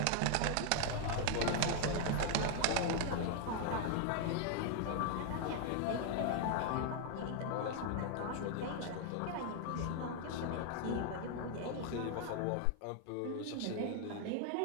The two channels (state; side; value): different; both; correlation 0.00